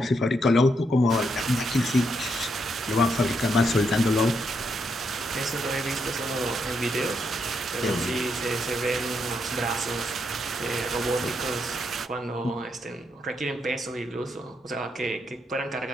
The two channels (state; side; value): normal; both; correlation 0.79